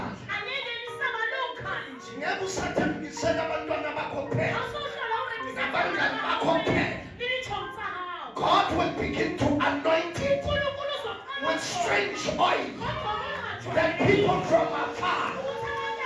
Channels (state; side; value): identical; both; correlation 1.00